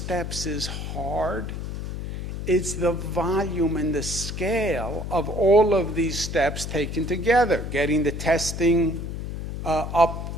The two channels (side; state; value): left; noise; hum, 6 dB below the sound